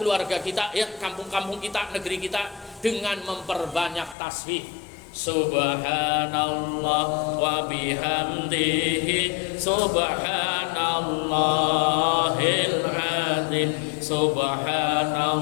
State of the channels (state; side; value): drops out; right; at 4.2 s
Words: keluarga kita, ya, kampung-kampung kita, negeri kita dengan memperbanyak tasbih. Subhanallah wa bihamdihi subhanallahil azim.